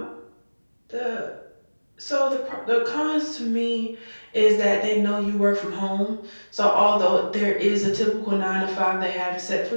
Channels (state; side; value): inverted; both; correlation -1.00